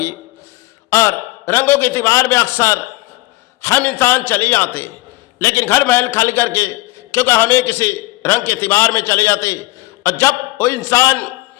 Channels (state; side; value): quieter; right; 19.5 dB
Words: और रंगों के त्योहार में अक्सर हम इंसान चले जाते, लेकिन घर महल खाली करके, क्योंकि हमें किसी रंग के त्योहार में चले जाते, और जब वो इंसान